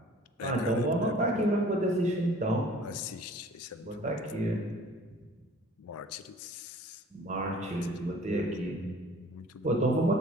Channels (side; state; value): both; normal; correlation 0.50